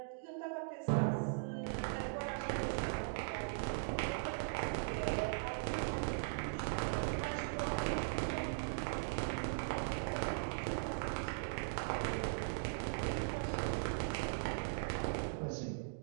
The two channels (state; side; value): silent; left; digital silence